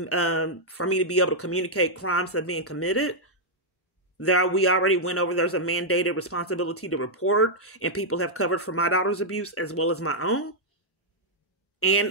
to be able to communicate crimes that are being committed. We already went over, there's a mandated responsibility to report, and people have covered for my daughter's abuse as well as my own.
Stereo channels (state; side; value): normal; both; correlation -0.05